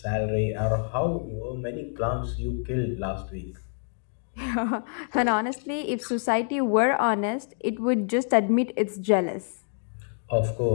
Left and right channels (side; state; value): right; silent; 59 dB below the other